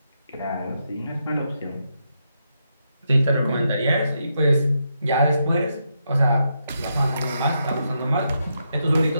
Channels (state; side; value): inverted; both; correlation -0.82